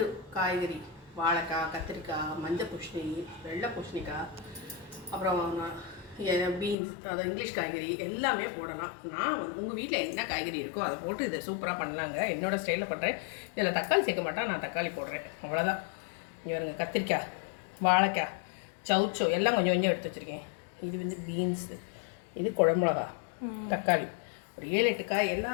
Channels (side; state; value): right; drops out; at 6.8 s